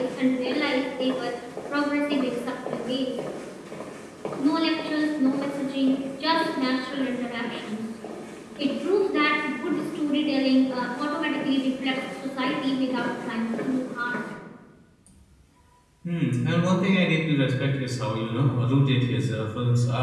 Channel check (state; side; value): identical; both; correlation 1.00